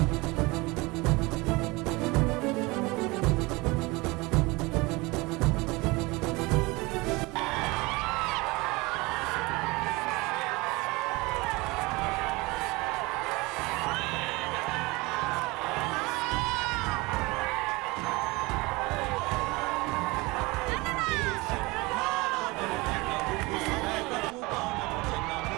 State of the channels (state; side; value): quieter; left; 23.7 dB